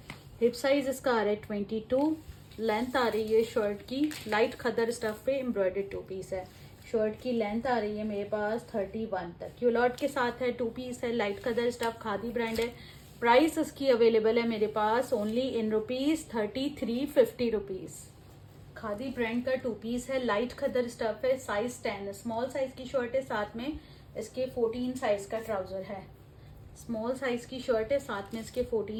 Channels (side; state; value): both; identical; correlation 1.00